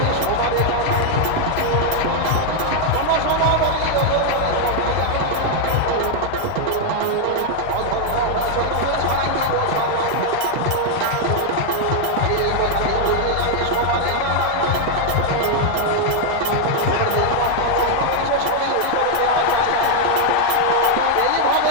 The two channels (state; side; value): different; both; correlation 0.00